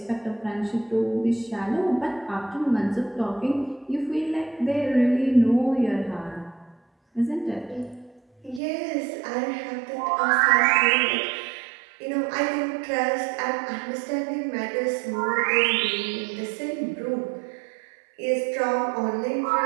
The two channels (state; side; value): drops out; left; at 8.6 s